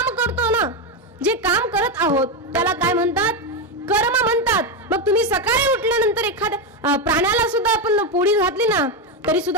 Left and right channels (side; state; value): both; normal; correlation 0.09